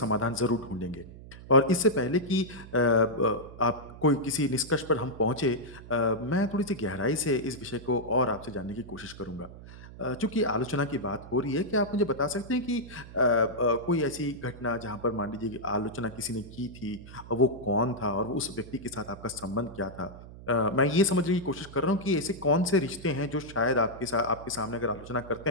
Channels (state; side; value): noise; right; hum, 16 dB below the sound